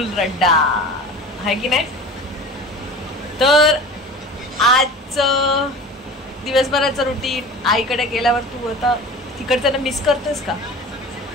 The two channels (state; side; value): normal; both; correlation 0.38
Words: रड्डा आहे की नाही. तर आज दिवसभराचं रुटीन आईकडे गेल्यावर तू आता तिकडचं मिस करतोस का?